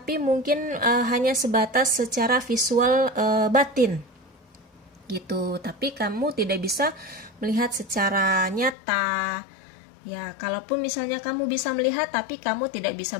mungkin hanya sebatas secara visual batin gitu. Tapi kamu tidak bisa melihat secara nyata. Ya, kalaupun misalnya kamu bisa melihat tapi kamu tidak bisa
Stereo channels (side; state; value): right; drops out; at 8.8 s